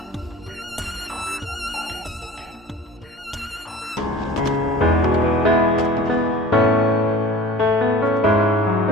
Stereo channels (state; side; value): normal; both; correlation 0.42